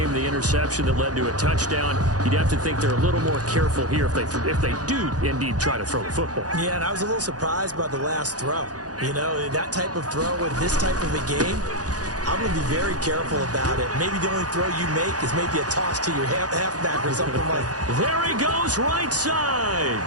The interception that led to a touchdown. You'd have to think they're a little more careful here if they do indeed try to throw the football. Yeah, and I was a little surprised by the last throw. You know, that type of throw in this type of a game, I'm going to be very careful about it. Maybe the only throw you make is maybe a toss to your halfback or something like that. There he goes, right side.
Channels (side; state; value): left; late; 0.68 ms